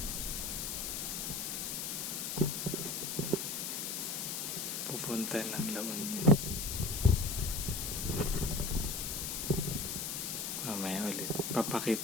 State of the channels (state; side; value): noise; left; hiss, 3 dB below the sound